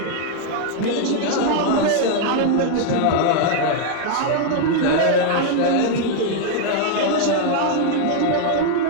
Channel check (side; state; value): both; different; correlation 0.00